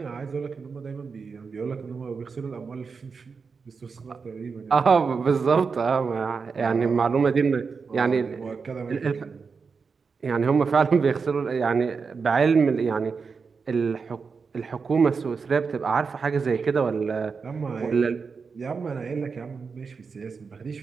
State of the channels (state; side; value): quieter; left; 5.2 dB